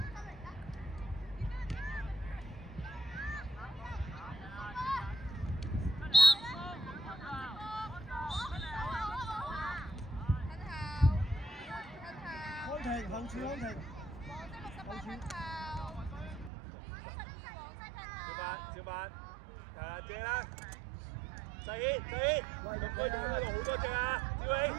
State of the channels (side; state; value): left; drops out; at 16.5 s